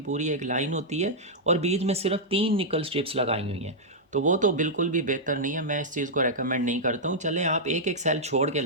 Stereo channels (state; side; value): normal; both; correlation -0.07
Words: एक लाइन होती है और बीच में सिर्फ 3 निकल स्ट्रिप्स लगाई हुई हैं। तो वो तो बिल्कुल भी बेहतर नहीं है, मैं इस चीज़ को रेकमेंड नहीं करता हूँ। चलें आप एक एक सेल छोड़ के